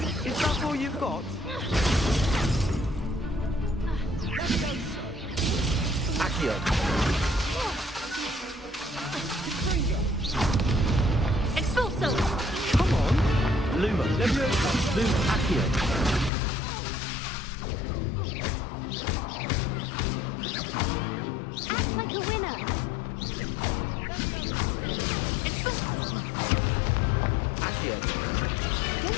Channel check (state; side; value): drops out; right; at 16.3 s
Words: Is that all you've got? Accio. Expulso! Come on. Lumos. Levioso. Lumos. Accio. Act like a winner! Accio.